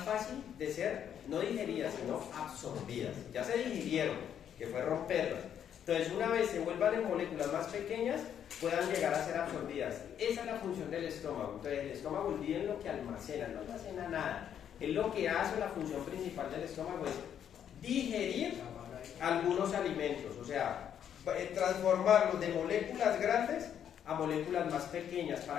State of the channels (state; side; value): quieter; right; 9.2 dB